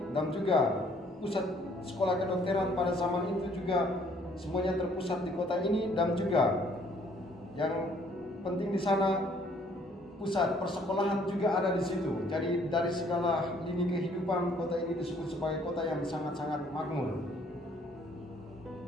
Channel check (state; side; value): normal; both; correlation 0.62